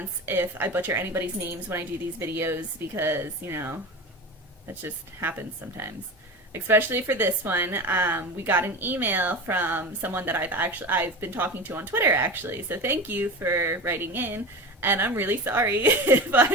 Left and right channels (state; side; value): normal; both; correlation 0.28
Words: if I butcher anybody's names when I do these videos because, that just happens sometimes. Especially for this one, we got an email from someone that I've been talking to on Twitter actually. So thank you for writing in, and I'm really sorry if